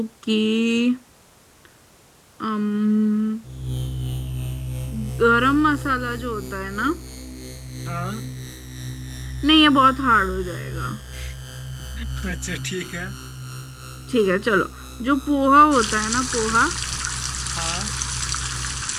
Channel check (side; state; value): both; identical; correlation 1.00